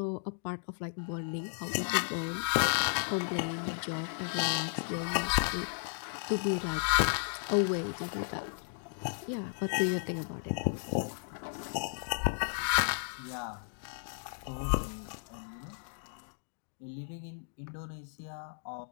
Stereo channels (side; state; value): right; silent; digital silence